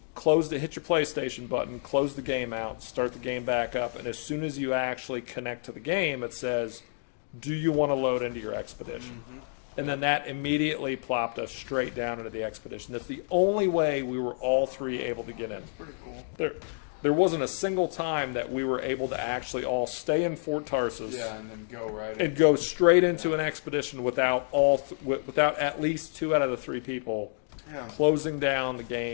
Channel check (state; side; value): silent; right; digital silence